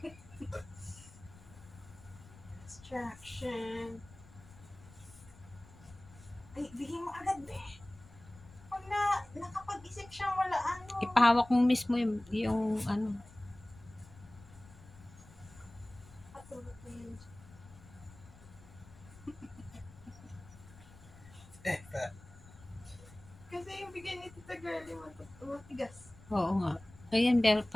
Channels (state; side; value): noise; left; rumble, 21 dB below the sound